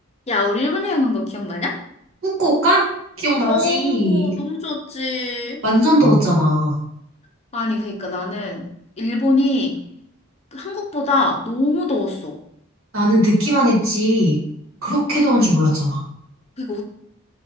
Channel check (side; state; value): both; normal; correlation 0.50